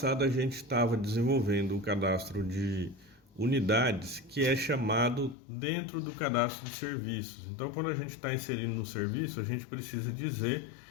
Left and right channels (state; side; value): drops out; right; at 5.4 s